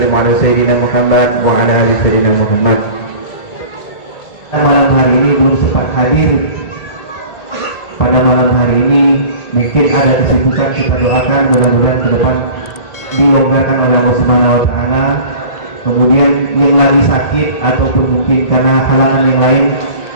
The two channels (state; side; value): late; right; 1.9 ms